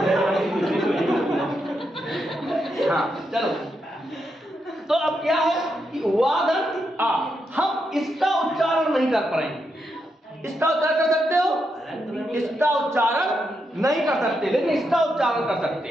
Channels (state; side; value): normal; both; correlation 0.83